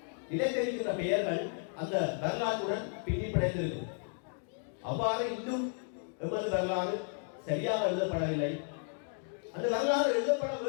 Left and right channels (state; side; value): silent; right; 55 dB below the other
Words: நிலைத்திருக்கின்ற பெயர்கள் அந்த வரலாற்றுடன் பின்னி பிணைந்திருக்கும். அவ்வாறு இன்னும் எமது வரலாறு சரியாக எழுதப்படவில்லை. அந்த வரலாறு எழுதப்பட